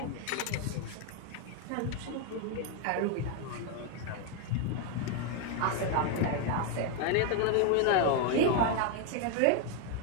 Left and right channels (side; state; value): both; different; correlation 0.01